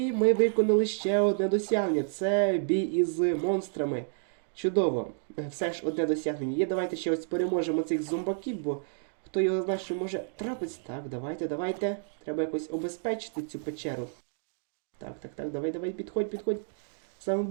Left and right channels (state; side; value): silent; left; digital silence